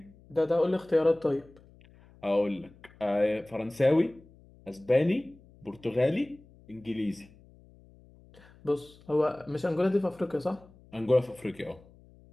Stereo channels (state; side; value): noise; left; hum, 25 dB below the sound